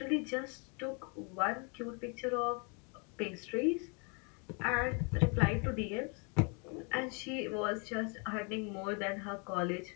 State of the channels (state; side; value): quieter; right; 35.8 dB